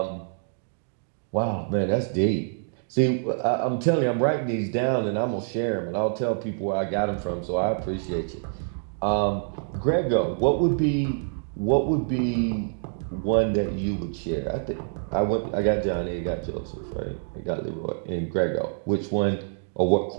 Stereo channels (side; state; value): left; silent; digital silence